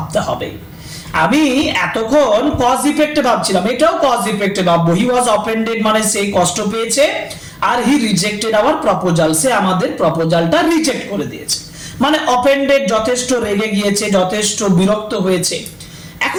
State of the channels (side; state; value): both; identical; correlation 1.00